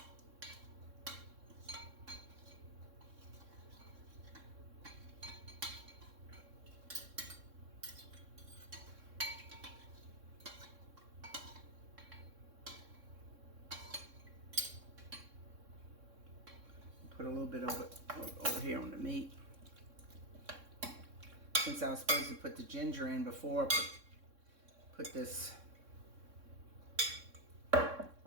Put a little bit over here on the meat. Since I was supposed to put the ginger in before, put this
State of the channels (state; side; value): late; left; 3.6 ms